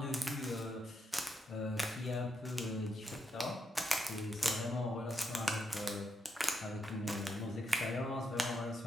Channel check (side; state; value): both; normal; correlation 0.81